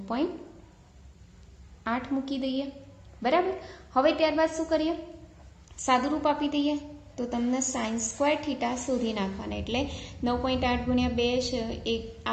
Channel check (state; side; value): identical; both; correlation 1.00